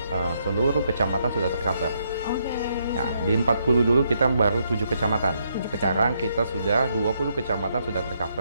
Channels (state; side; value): inverted; both; correlation -0.76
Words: seluruh kecamatan sudah tercover. Nah, di 40 dulu kita baru 7 kecamatan. Sekarang kita sudah 20 kecamatan sudah